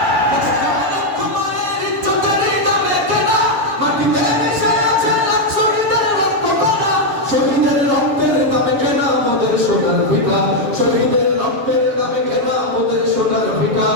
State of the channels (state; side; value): late; left; 7.1 ms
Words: দেশটা লক্ষ মায়ের ইজ্জতেরই দামে কেনা, মাটিতে মিশে আছে লাখ শহীদের রক্ত কণা। শহীদের রক্তের দামে কেনা আমাদের সোনার ভিটা, শহীদের রক্তের দামে কেনা আমাদের সোনার ভিটা।